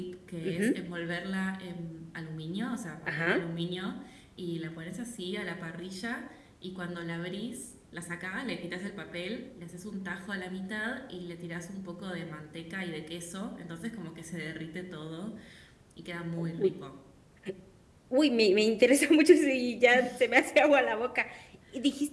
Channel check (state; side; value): identical; both; correlation 1.00